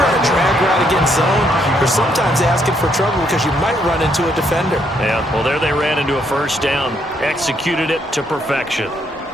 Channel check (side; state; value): both; normal; correlation 0.73